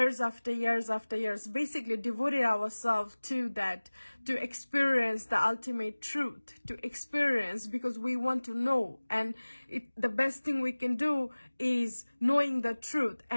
after years, basically devoted ourselves to that, to experience the ultimate truth, to experience, because we want to know. And the best thing we can do is knowing the truth,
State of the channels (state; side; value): inverted; both; correlation -1.00